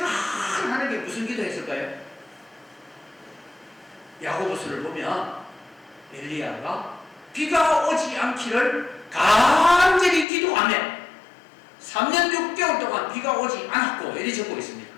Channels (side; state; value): right; drops out; at 10.2 s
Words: 하는 게 무슨 기도했을까요? 야고보서를 보면 엘리야가 비가 오지 않기를 간절히 기도하며 3년 6개월 동안 비가 오지 않았고, 이렇게 적고 있습니다.